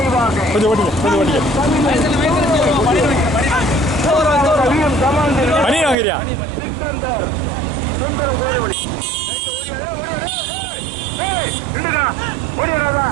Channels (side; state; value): left; drops out; at 6.0 s